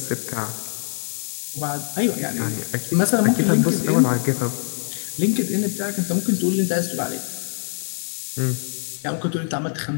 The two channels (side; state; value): right; silent; 63 dB below the other